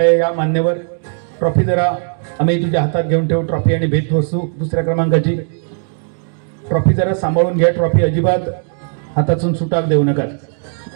या मान्यवर. ट्रॉफी जरा आम्ही तुझ्या हातात घेऊन ठेवू, ट्रॉफी आणि भेटवस्तू. दुसऱ्या क्रमांकाची ट्रॉफी जरा सांभाळून घ्या, ट्रॉफी अजिबात हातातून सुटाक देऊ नका.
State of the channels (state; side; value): silent; left; 56 dB below the other